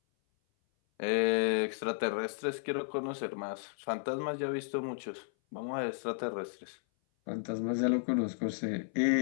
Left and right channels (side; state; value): right; silent; 55 dB below the other